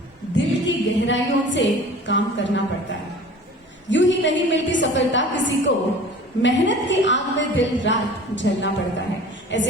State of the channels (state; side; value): normal; both; correlation 0.43